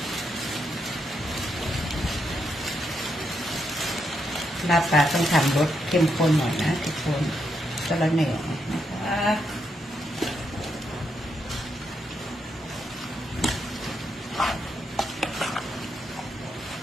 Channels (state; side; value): normal; both; correlation 0.80